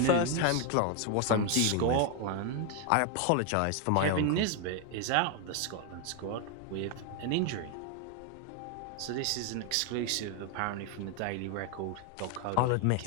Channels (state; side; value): different; both; correlation 0.01